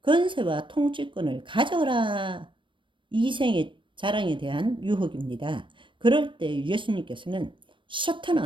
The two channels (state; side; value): late; left; 0.24 ms